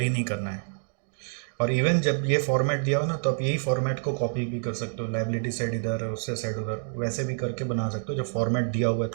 नहीं करना है। और इवन जब ये फॉर्मेट दिया हो ना, तो आप यही फॉर्मेट को कॉपी भी कर सकते हो। लाइबिलिटी साइड इधर, उससे साइड उधर, वैसे भी करके बना सकते हो जब फॉर्मेट दिया हुआ है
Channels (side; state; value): left; silent; digital silence